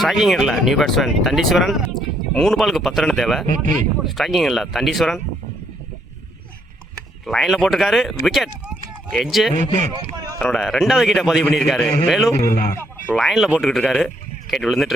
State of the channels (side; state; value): both; normal; correlation 0.71